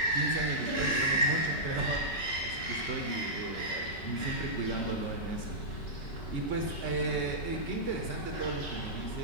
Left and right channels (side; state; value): right; late; 5.3 ms